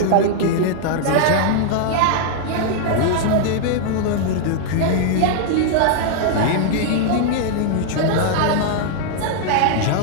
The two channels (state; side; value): different; both; correlation -0.01